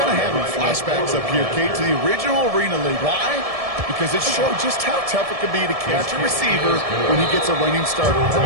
of having flashbacks up here, Kate, to the original Arena League. Why? Because it showed just how tough it can be to catch a receiver when he gets a running start. The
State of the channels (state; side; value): late; left; 1.7 ms